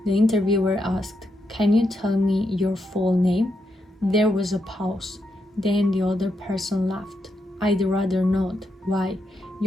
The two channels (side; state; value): both; normal; correlation 0.82